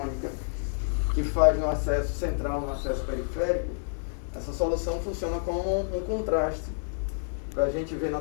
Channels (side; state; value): right; silent; 59 dB below the other